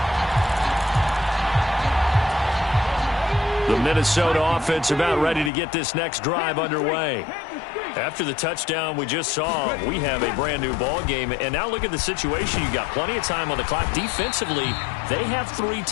The Minnesota offense about ready to get this next drive underway. After the touchdown we just saw, we have a brand new ball game. And now look at the situation. You've got plenty of time on the clock. Defensively, they have 3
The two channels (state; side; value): drops out; right; at 5.5 s